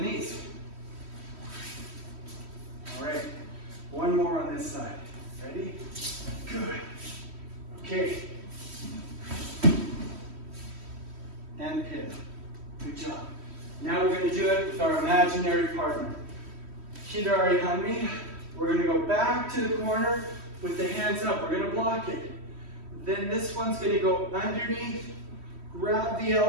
knees. All right. One more on this side. Ready? Good. Okay. And pin. Good job. Now we're going to do it with our imaginary partner. Hidari Hanmi. We're going to go back to the corner with the hands up. We're going to block it. Then this one's going to go underneath, grab the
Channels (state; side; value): late; left; 3.1 ms